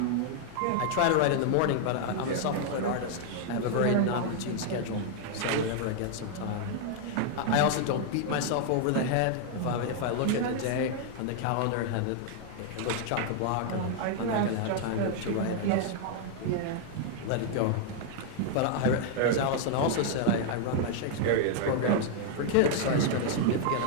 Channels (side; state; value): both; different; correlation -0.01